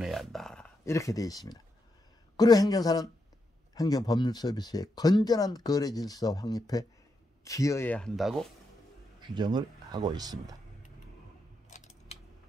한다. 이렇게 되어 있습니다. 그리고 행정사는 행정법률 서비스의 건전한 거래 질서 확립에 기여해야 한다고 규정을 하고 있습니다.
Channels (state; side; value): normal; both; correlation 0.83